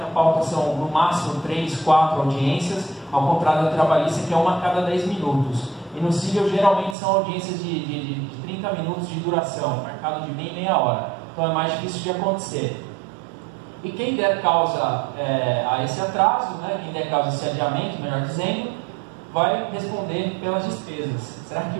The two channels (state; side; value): drops out; left; at 7.0 s